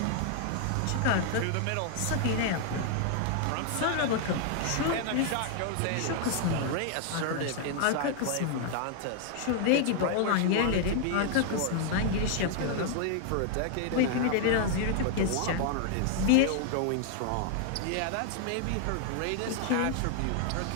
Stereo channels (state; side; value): different; both; correlation 0.00